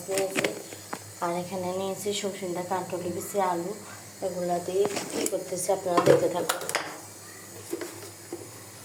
নিয়েছি। আর এখানে নিয়েছি সবজিটা, কাঁঠালি বিচি, আলু, এগুলা দিয়ে কী করতেছি আপনারা দেখতে থাকুন।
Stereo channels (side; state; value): both; identical; correlation 1.00